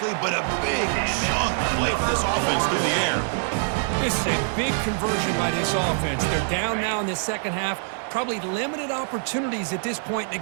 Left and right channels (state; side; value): silent; left; digital silence